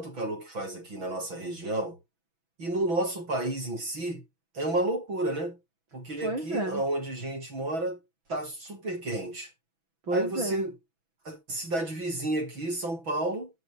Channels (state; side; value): late; left; 6.1 ms